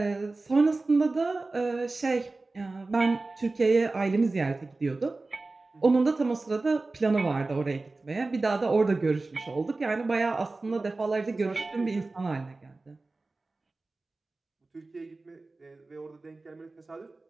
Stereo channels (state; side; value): quieter; left; 3.4 dB